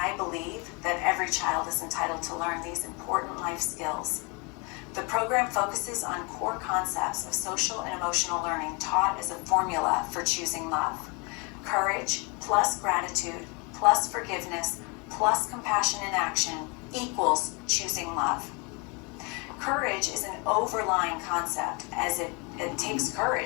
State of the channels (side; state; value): right; quieter; 30.9 dB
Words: believe that every child is entitled to learn these important life skills. The program focuses on core concepts of social and emotional learning taught as a formula for choosing love. Courage plus gratitude plus forgiveness plus compassion in action equals choosing love. Courage is an overlying concept, as it takes